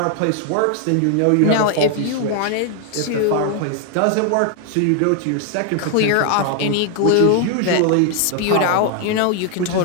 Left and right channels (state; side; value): different; both; correlation 0.00